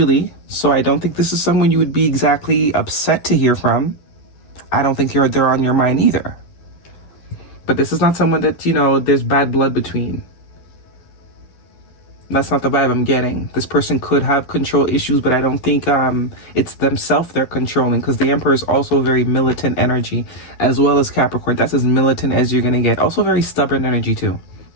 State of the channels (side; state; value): right; late; 12 ms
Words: So I don't think this is someone you would be exactly upset to hear from. I don't think they're on your mind either. But this is not someone that, you know, there's bad blood between. That's not the vibe I'm getting. This person could have control issues, but I don't think it's themselves they're controlling, because the Emperor is also very militant energy, as well as Capricorn. That's as militant as you're going to get. Also very stubborn energy too.